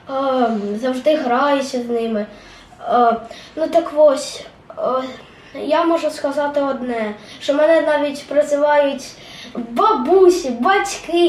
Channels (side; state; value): both; identical; correlation 1.00